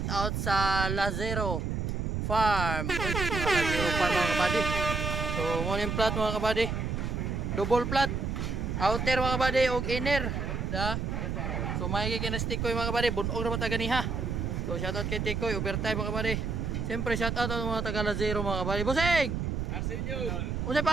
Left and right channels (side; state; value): right; noise; rumble, 1 dB below the sound